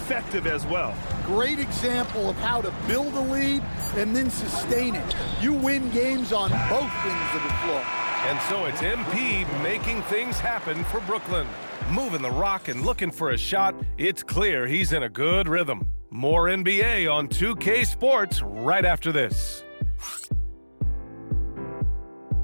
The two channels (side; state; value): both; inverted; correlation -1.00